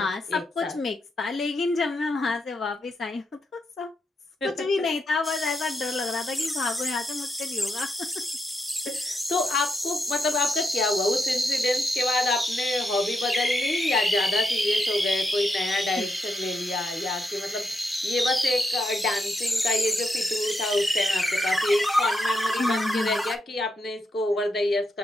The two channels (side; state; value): both; normal; correlation 0.82